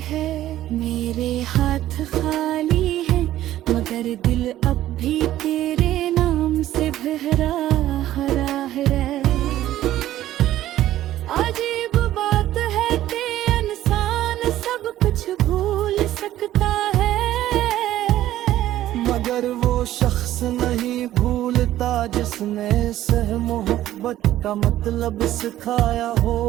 मेरे हाथ खाली हैं, मगर दिल अब भी तेरे नाम से भरा हरा है। अजीब बात है कि इंसान सब कुछ भूल सकता है, मगर वो शख्स नहीं भूलता जिसने सह मोहब्बत का मतलब सिखाया हो।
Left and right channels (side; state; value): left; quieter; 13.6 dB